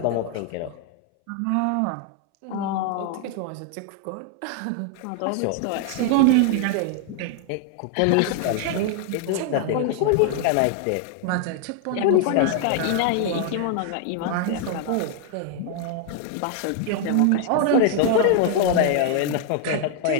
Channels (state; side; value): different; both; correlation 0.00